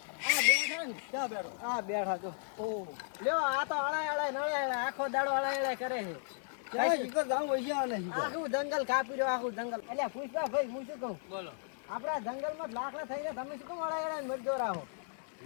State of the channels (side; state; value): right; silent; 54 dB below the other